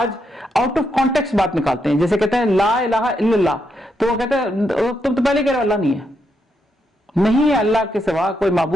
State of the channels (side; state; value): both; normal; correlation 0.80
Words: آؤٹ آف کانٹیکسٹ بات نکالتے ہیں. جیسے کہتے ہیں لا الہ الا اللہ, تو وہ کہتے ہیں تم تو پہلے کہہ رہے ہو اللہ نہیں ہے. نہیں ہے اللہ کے سوا کوئی